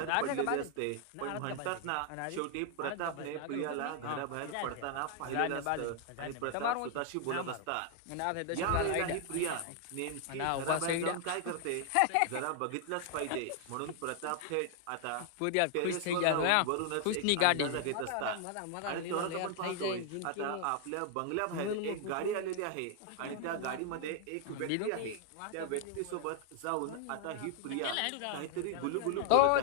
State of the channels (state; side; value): different; both; correlation 0.00